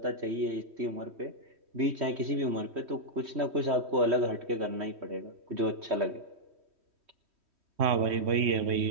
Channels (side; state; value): left; late; 3.1 ms